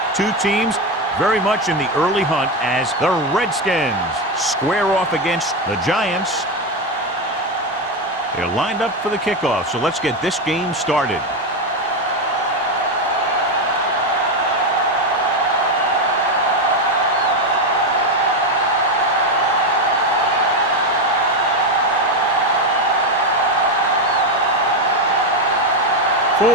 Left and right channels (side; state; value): both; normal; correlation 0.10